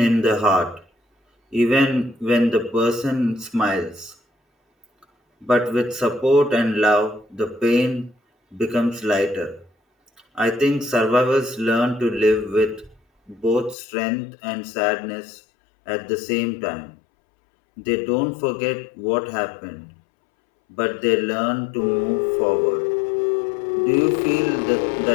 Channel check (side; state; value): right; drops out; at 13.8 s